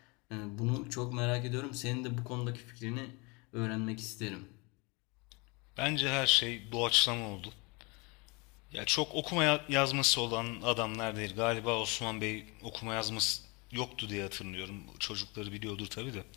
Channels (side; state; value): right; quieter; 28.4 dB